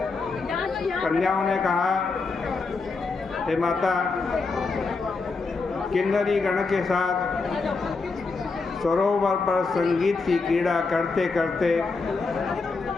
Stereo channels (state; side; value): quieter; right; 4.2 dB